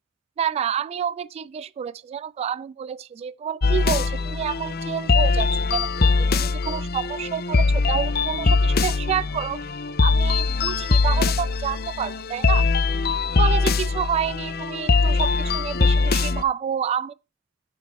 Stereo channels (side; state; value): both; normal; correlation 0.50